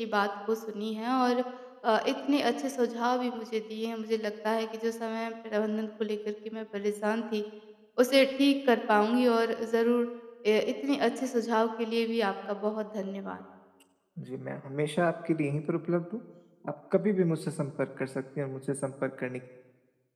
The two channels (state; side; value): identical; both; correlation 1.00